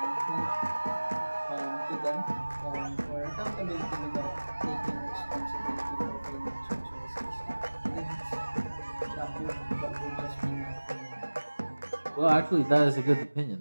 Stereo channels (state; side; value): inverted; both; correlation -1.00